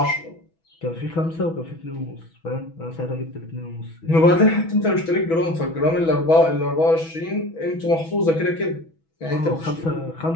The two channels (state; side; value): late; right; 6.1 ms